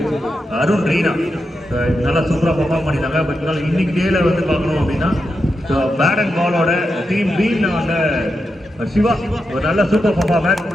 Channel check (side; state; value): both; normal; correlation 0.87